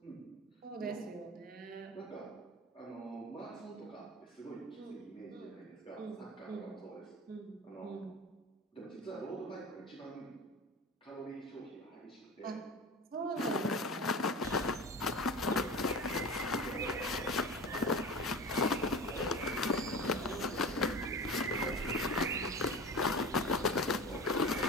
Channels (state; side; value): normal; both; correlation 0.33